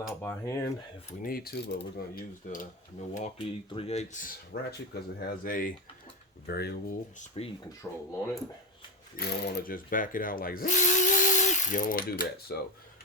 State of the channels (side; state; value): both; normal; correlation 0.15